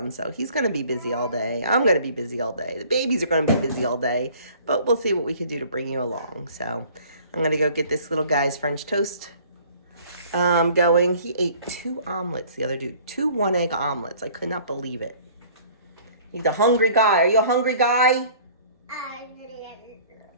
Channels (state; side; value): inverted; both; correlation -0.52